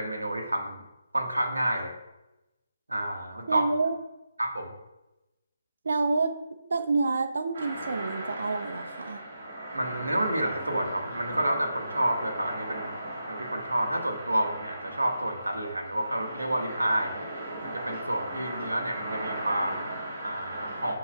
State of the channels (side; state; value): both; inverted; correlation -0.88